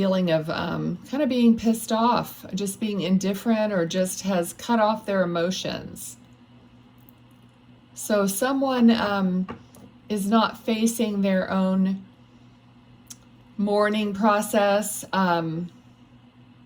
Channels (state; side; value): identical; both; correlation 1.00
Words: of kind of being pissed off, just being indifferent, or just has cut off their emotions. So someone is not facing their own mourning process,